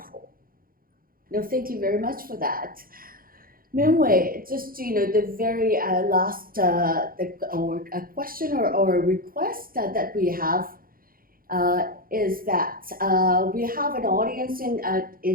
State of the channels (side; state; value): left; late; 0.42 ms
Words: No, thank you very much for that. Mingwei, just the very last or a question or a request that we have is that we have an audience